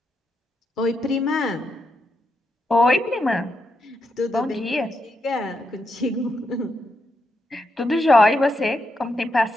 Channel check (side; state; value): both; normal; correlation 0.83